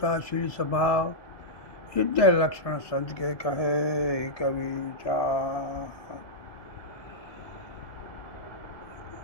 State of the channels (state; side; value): late; right; 2.1 ms